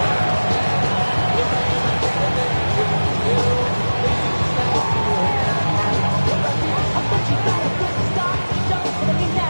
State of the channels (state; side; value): inverted; both; correlation -1.00